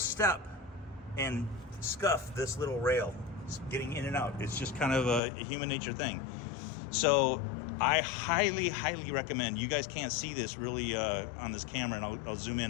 and scuff this little rail getting in and out. It's just kind of a human nature thing. So I highly recommend, you guys can't see this really on this camera, and I'll zoom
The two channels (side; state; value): right; drops out; at 5.2 s